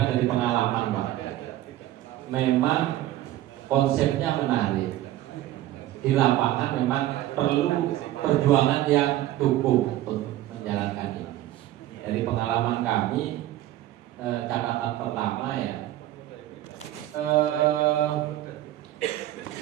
dari pengalaman, Pak. Memang konsepnya menarik. Di lapangan memang perlu perjuangan yang cukup untuk menjalankan ini. Dari pengalaman kami, catatan pertama ya,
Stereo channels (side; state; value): left; quieter; 14.4 dB